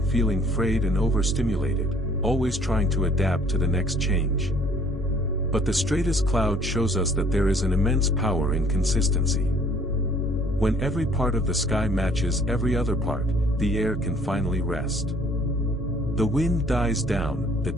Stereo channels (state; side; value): normal; both; correlation 0.58